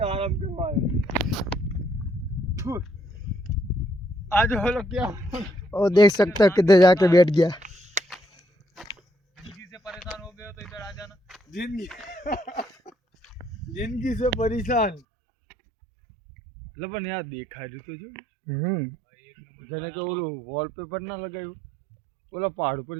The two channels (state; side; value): drops out; left; at 15.0 s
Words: आराम करवाया। आज बोलो क्या वो देख सकते हो किधर जाके बैठ गया। जिंदगी से परेशान हो गए हो तो इधर आ जाना। जिंदगी से परेशान लबन यार देखा तो जो जने के ओलो वॉलपेपर ना लगायो ओला पहाड़ पर